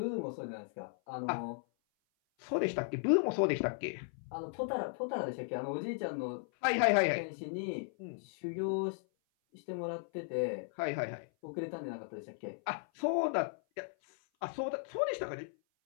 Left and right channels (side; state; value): right; silent; 54 dB below the other